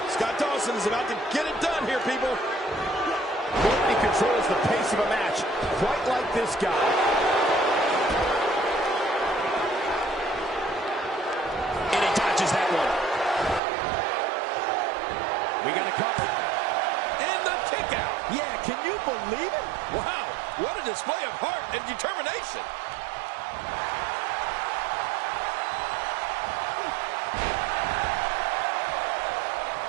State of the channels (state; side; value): drops out; left; at 13.6 s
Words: Scott Dawson is about to get it done here, people. Nobody controls the pace of a match quite like this guy. And he dodges that one. We got a cover. And the kick out. Yeah, can you believe it? Wow, what a display of heart and determination.